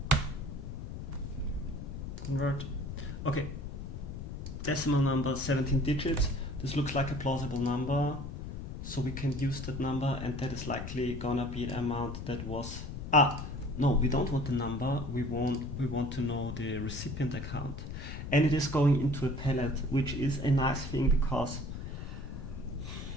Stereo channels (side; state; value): left; noise; rumble, 7 dB below the sound